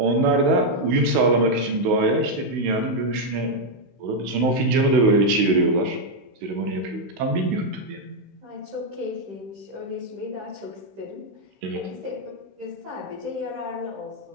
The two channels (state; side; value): late; left; 16 ms